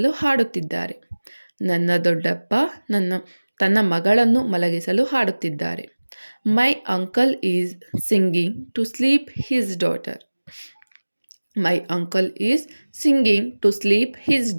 ಹಾಡುತ್ತಿದ್ದಾರೆ. ನನ್ನ ದೊಡ್ಡಪ್ಪ ತನ್ನ ಮಗಳನ್ನು ಮಲಗಿಸಲು ಹಾಡುತ್ತಿದ್ದಾರೆ. My uncle is singing to sleep his daughter. My uncle is singing to sleep his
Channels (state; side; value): inverted; both; correlation -1.00